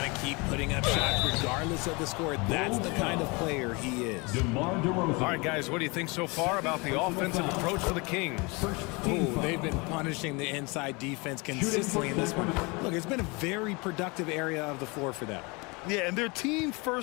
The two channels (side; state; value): right; quieter; 27.6 dB